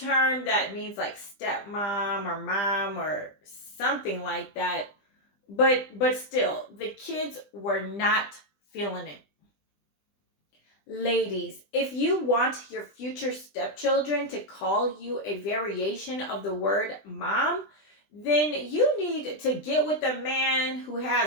that means like stepmom or mom or something like that. But still, the kids were not feeling it. Ladies, if you want your future stepchildren to call you a variation of the word mom, then you need to get with a man who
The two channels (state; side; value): late; right; 20 ms